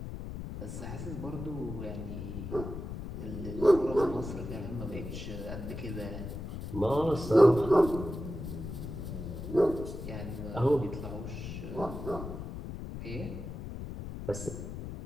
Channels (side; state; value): left; noise; rumble, 7 dB below the sound